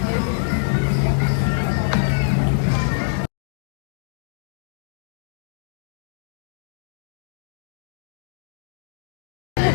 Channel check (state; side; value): silent; right; digital silence